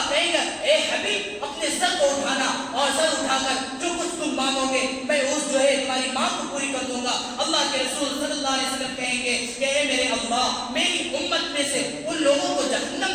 کہے گا اے حبیب اپنے سر کو اٹھانا، اور سر اٹھا کر جو کچھ تم مانگو گے میں اس جو ہے تمہاری مانگ کو پوری کر دوں گا۔ اللہ کے رسول صلی اللہ علیہ وسلم کہیں گے کہ اے میرے اللہ میری امت میں سے ان لوگوں کو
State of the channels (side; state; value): both; identical; correlation 1.00